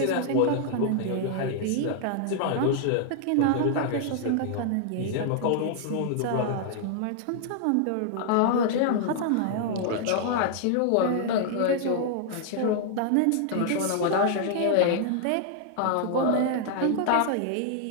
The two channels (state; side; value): different; both; correlation -0.01